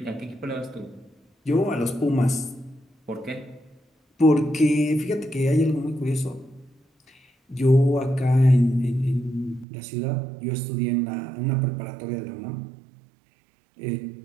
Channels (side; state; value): left; drops out; at 9.7 s